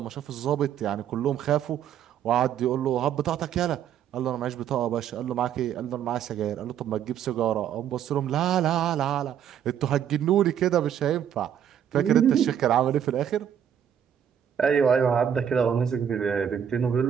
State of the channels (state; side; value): quieter; left; 9.1 dB